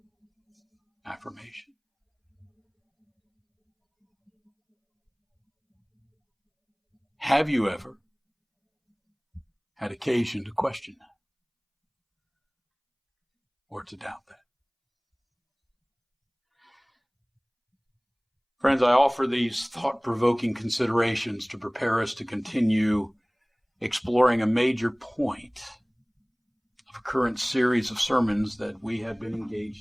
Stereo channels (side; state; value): both; identical; correlation 1.00